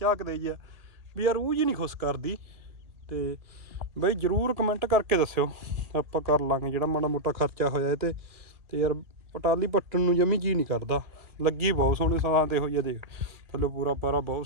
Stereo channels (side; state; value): left; late; 1.8 ms